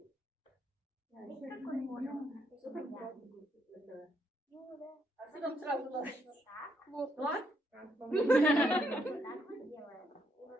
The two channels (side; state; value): both; normal; correlation 0.75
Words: А что нам сразу надо? Вот так.